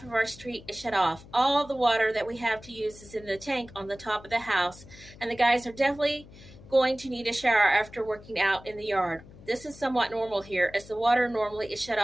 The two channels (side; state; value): left; noise; hum, 20 dB below the sound